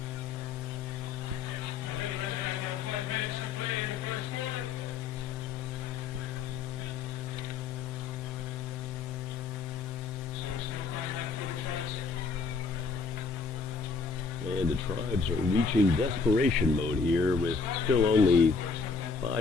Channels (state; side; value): quieter; right; 4.8 dB